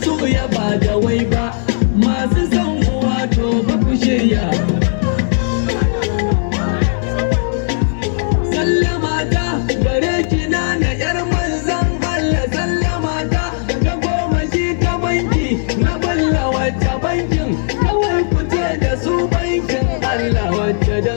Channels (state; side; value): silent; right; digital silence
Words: su ya ba da wai ba masu son uwa to ba ku shirya sallama ta gare ki na yar manzan Allah sallama ta ta goma shi ta banki na balla wacce bankin kawai ku ce da su bankin Allah wacce